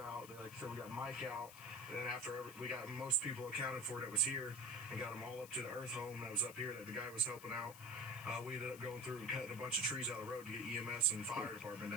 out. Like I said, we got Mike out. And then after we got most people accounted for that was here and got them all up to the Earth home that was up here that the guy was helping out. We ended up going through and cutting a bunch of trees out of the road to get EMS and fire department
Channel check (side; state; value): left; noise; hiss, 16 dB below the sound